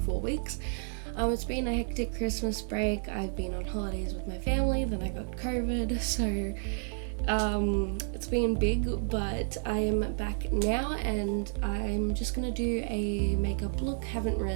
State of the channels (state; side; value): silent; left; 57 dB below the other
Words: 4 weeks. It's been a hectic Christmas break. I've been on holidays with my family, then I got COVID, so it's been big, but I am back now and I'm just gonna do a makeup look. Haven't